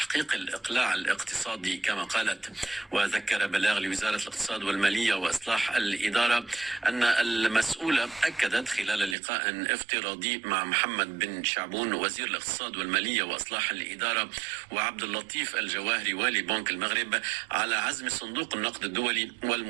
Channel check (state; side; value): drops out; left; at 9.2 s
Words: الإقلاع الاقتصادي كما قالت. وذكر بلاغ لوزارة الاقتصاد والمالية وإصلاح الإدارة أن المسؤولة أكدت خلال لقاء افتراضي مع محمد بن شعبون وزير الاقتصاد والمالية وإصلاح الإدارة وعبد اللطيف الجواهري والي بنك المغرب على عزم صندوق النقد الدولي